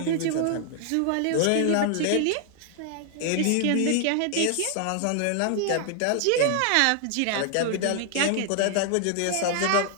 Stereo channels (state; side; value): different; both; correlation 0.00